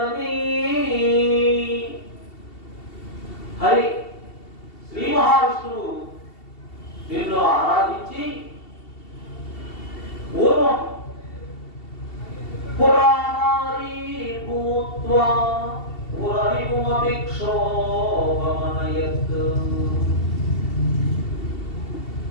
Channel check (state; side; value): late; right; 2.7 ms